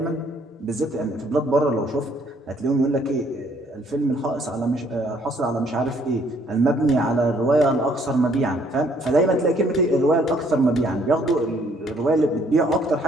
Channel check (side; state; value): both; normal; correlation 0.65